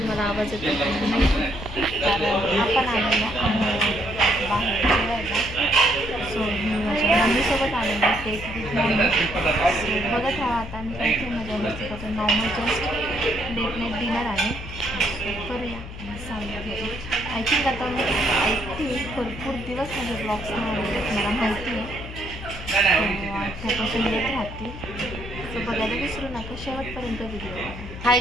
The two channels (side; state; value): left; noise; hum, 11 dB below the sound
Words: आवाज येतो कारण आपण आलेलो बाहेर जेवायला. सो मी माझ्या मम्मीसोबत आलेलो आहे सो बघत राहा. आता आम्ही काहीतरी मजा मस्ती करतो. Normal just let night dinner आहे. सो करूया सांगतो. आय थिंक आता मी भरपूर दिवस माझे ब्लॉग्स नाही आलेले, मला माहिती आहे. त्यापासून येत राहतील. सो बघायला विसरू नका, शेवटपर्यंत व्हिडिओ हाय